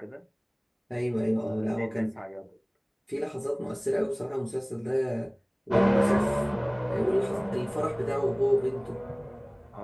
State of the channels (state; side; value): identical; both; correlation 1.00